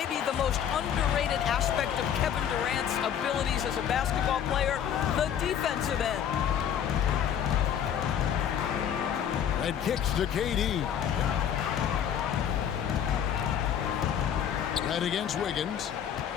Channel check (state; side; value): quieter; right; 9.1 dB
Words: the most underrated aspect of Kevin Durant's abilities as a basketball player, the defensive end. And kicks to KD. Red against Wiggins.